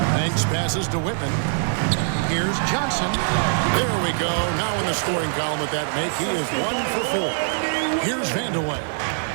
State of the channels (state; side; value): silent; left; digital silence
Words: Banks passes to Whitman. Here's Johnson. There we go. Now in the scoring column with that make, he is 1 for 4. Here's Vandeweghe.